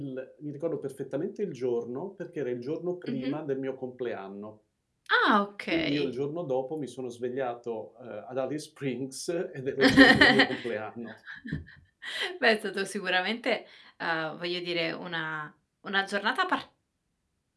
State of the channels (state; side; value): identical; both; correlation 1.00